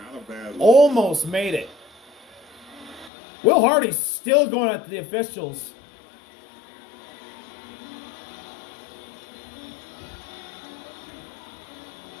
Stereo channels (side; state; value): right; drops out; at 3.1 s